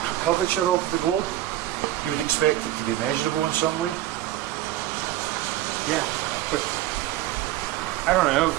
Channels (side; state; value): left; quieter; 14.3 dB